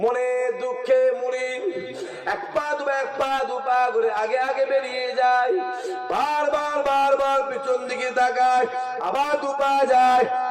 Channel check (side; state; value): both; identical; correlation 1.00